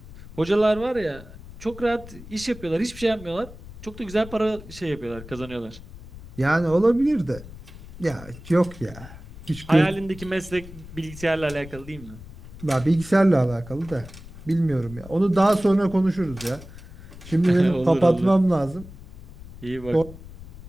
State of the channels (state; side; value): noise; left; rumble, 16 dB below the sound